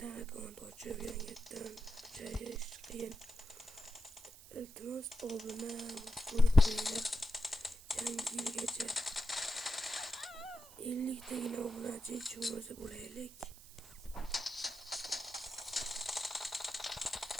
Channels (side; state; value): right; noise; hiss, 18 dB below the sound